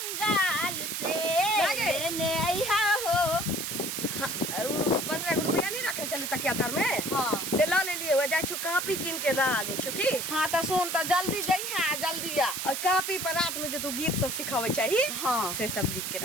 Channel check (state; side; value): noise; right; hiss, 3 dB below the sound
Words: से लेने आई हो। 15 रुपया नहीं रखे चले तकिया तर में हाँ से ला ले लिए हो जाय छु कॉपी किन के ला ले छु की। हाँ तो सुन तो जल्दी जइहा जल्दी आ। और कॉपी पर रात में जो तू गीत सब सिखावे चाहिए हाँ से सब लिख के